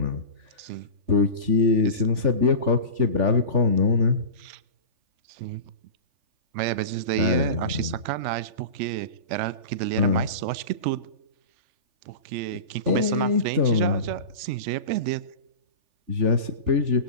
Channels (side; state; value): left; late; 3.4 ms